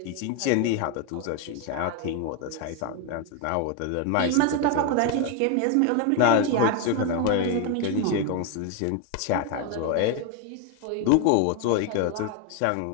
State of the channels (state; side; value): different; both; correlation 0.01